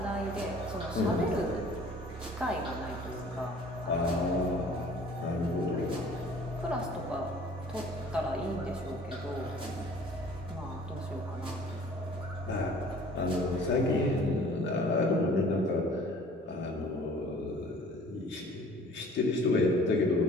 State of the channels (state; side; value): normal; both; correlation 0.50